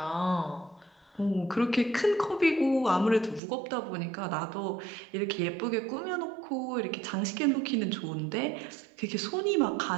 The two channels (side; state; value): left; drops out; at 3.4 s